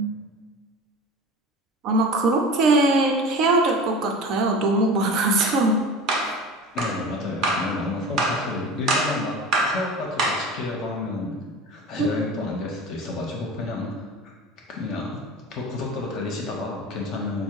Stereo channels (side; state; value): both; normal; correlation 0.35